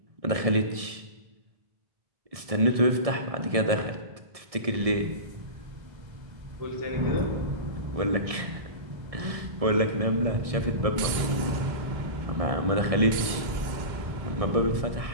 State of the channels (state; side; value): late; left; 1.6 ms